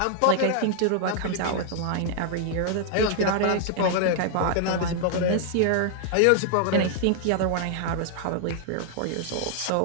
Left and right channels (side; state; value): both; different; correlation 0.00